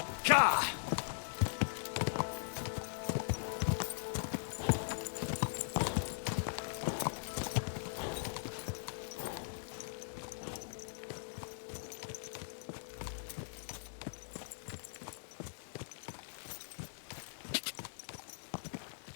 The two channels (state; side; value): silent; right; digital silence